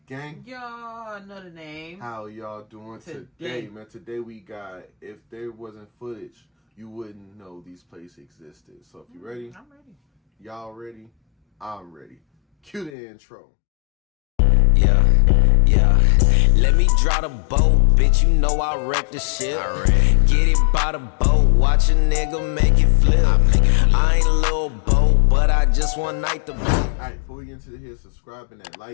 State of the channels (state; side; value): drops out; right; at 13.0 s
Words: gang? Y'all know the name. How y'all doing today, man? Today we got, if there wasn't footage, you wouldn't know these places existed. So if you ready? I'm ready. Y'all ready? I'm ready. Cue the intro. Yeah. Let me draw the boat, bitch. You know I wreck the shit. Get it by the boat, watch a nigga make it flip. I ain't a little boat, but I just one night the boat. Alright, before we get into here, subscribe and that